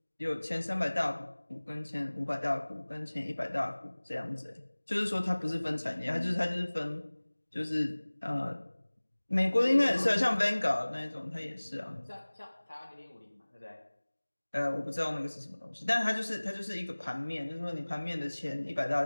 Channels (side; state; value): both; inverted; correlation -1.00